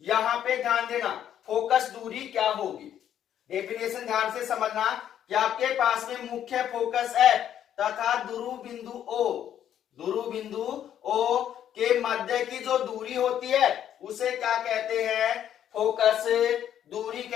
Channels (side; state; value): right; quieter; 10.2 dB